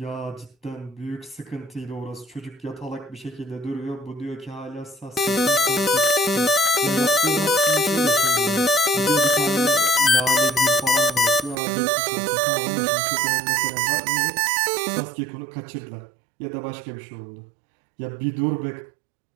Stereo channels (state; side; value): drops out; left; at 11.6 s